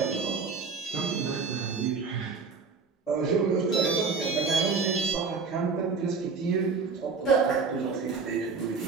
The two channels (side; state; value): left; quieter; 4.8 dB